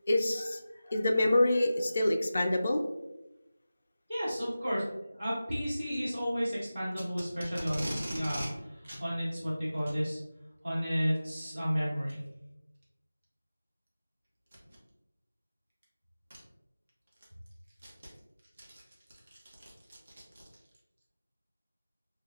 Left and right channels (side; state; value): both; inverted; correlation -0.95